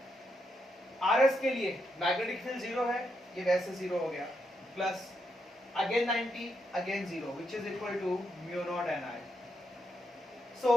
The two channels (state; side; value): normal; both; correlation 0.81